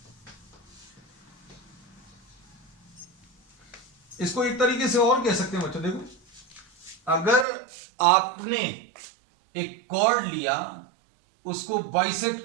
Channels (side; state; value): left; drops out; at 7.5 s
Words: इसको एक तरीके से और कह सकते हैं बच्चों, देखो अगर आपने एक कॉर्ड लिया, उसको बाइसेक्ट